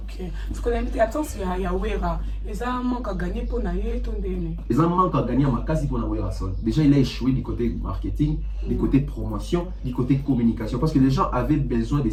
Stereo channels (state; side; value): identical; both; correlation 1.00